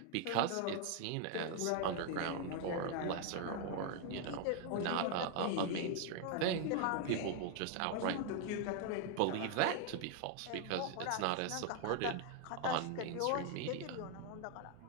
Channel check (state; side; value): different; both; correlation 0.00